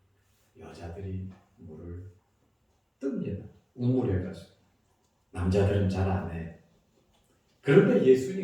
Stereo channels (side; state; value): both; identical; correlation 1.00